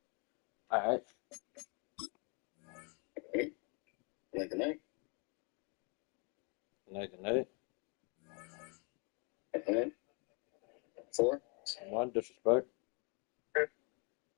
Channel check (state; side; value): quieter; right; 35.0 dB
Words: All right. Okay. Good night. Good night. Okay. 4. 1, disrespect.